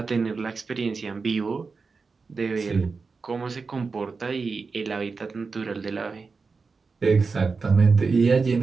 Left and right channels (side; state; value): left; quieter; 4.6 dB